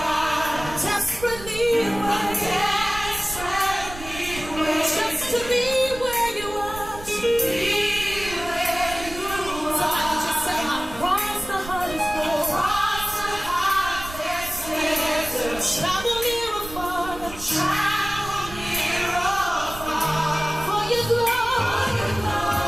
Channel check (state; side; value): noise; right; rumble, 13 dB below the sound